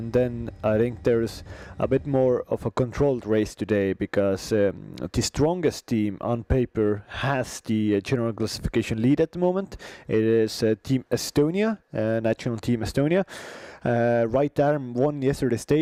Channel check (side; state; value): both; identical; correlation 1.00